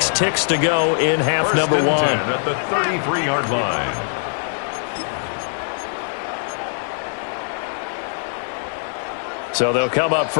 ticks to go in half number 1. At the 33-yard line. So they'll come up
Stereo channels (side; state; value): right; silent; 65 dB below the other